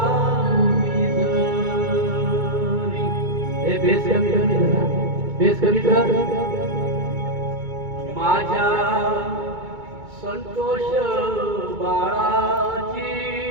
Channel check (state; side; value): late; left; 2.2 ms